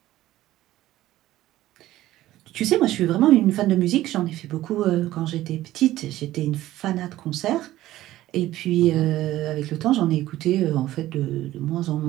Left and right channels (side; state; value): left; quieter; 15.1 dB